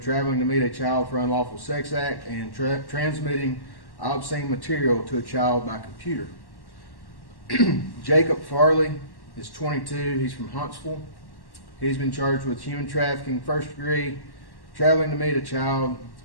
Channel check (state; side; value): late; right; 1.1 ms